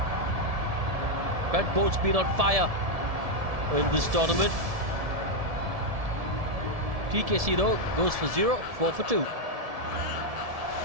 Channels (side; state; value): left; late; 1.7 ms